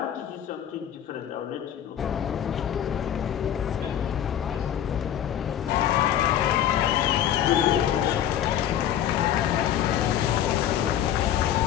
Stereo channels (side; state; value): right; quieter; 10.5 dB